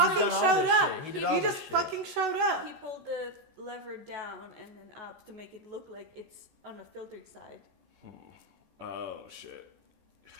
showed up. He just fucking showed up. He pulled the lever down and then up to make it look like it's on a filtered side. Oh shit.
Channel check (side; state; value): left; late; 14 ms